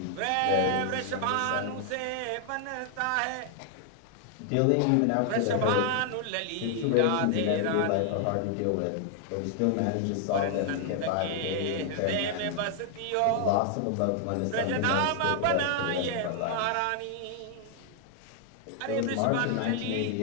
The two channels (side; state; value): both; different; correlation 0.00